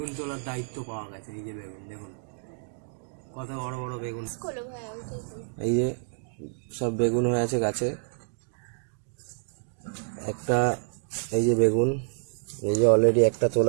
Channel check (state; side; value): silent; left; digital silence